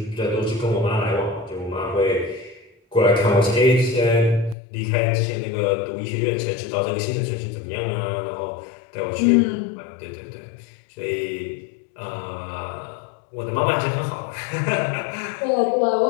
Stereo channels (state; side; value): drops out; right; at 4.5 s